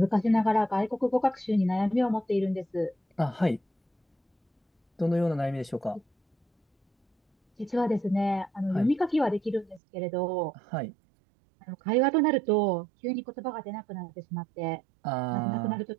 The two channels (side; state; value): left; drops out; at 9.8 s